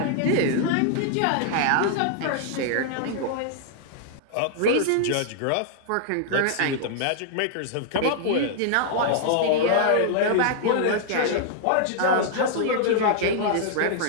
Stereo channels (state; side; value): different; both; correlation -0.01